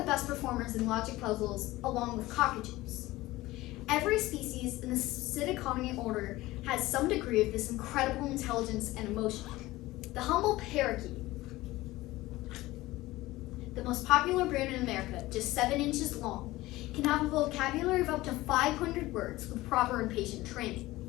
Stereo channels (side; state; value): right; quieter; 18.3 dB